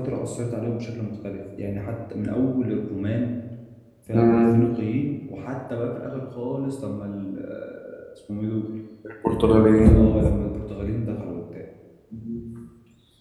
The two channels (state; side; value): identical; both; correlation 1.00